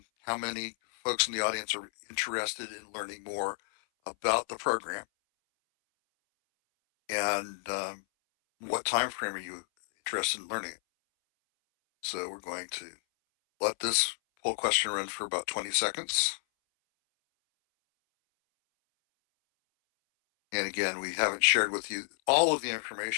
many folks in the audience are interested in learning more about the program? And what time frame are you interested in learning it? So we're going to let this poll question run for about 20 seconds. And again, we haven't shared with you all of the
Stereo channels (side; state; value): right; silent; 57 dB below the other